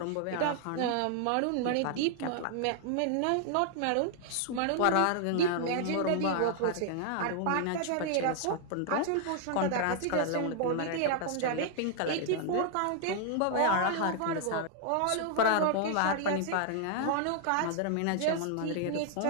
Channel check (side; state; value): both; different; correlation 0.00